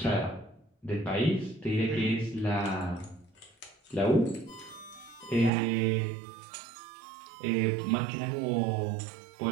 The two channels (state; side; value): drops out; left; at 5.5 s